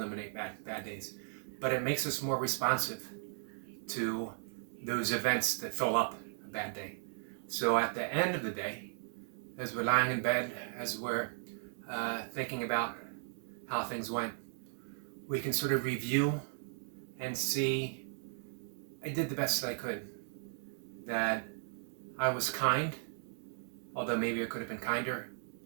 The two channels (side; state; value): left; silent; digital silence